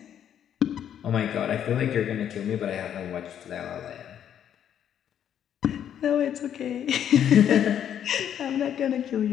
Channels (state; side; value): quieter; right; 9.6 dB